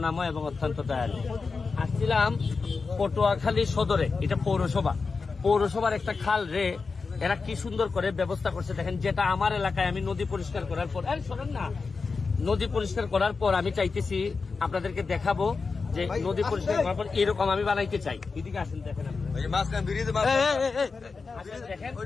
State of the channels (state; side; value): quieter; right; 4.6 dB